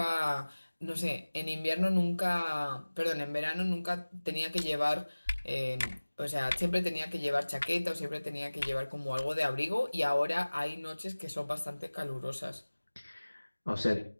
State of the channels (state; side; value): inverted; both; correlation -1.00